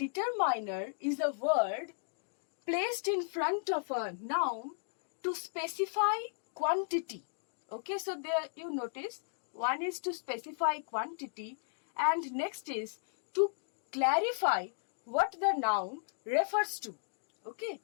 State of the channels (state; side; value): silent; right; digital silence